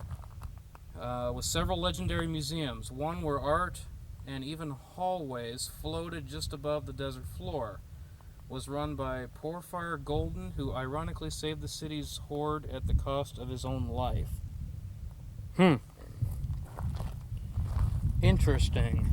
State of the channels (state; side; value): identical; both; correlation 1.00